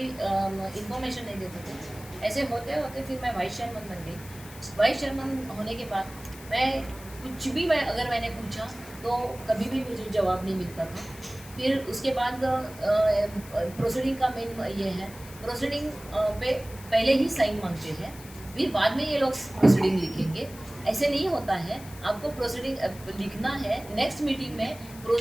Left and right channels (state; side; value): noise; left; hiss, 18 dB below the sound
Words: इंफॉर्मेशन नहीं देते थे। ऐसे होते होते फिर मैं वाइस चेयरमैन बन गई। वाइस चेयरमैन होने के बाद मैं कुछ भी अगर मैंने पूछा तो कभी भी मुझे जवाब नहीं मिलता था। फिर उसके बाद प्रोसीडिंग का मेन ये है, प्रोसीडिंग पे पहले ही साइन मांगते हैं, फिर बाद में ये लोग प्रोसीडिंग लिखेंगे। ऐसे नहीं होता है, आपको प्रोसीडिंग लिखना है, नेक्स्ट मीटिंग में